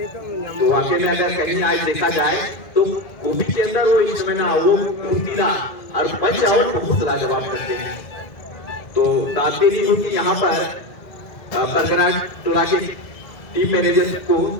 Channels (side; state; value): right; late; 2.1 ms